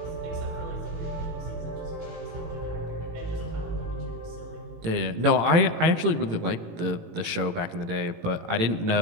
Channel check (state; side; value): late; left; 18 ms